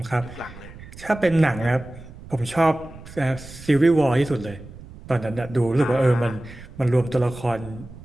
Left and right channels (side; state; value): right; noise; rumble, 17 dB below the sound